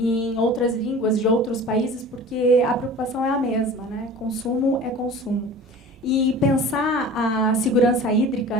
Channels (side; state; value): both; normal; correlation 0.40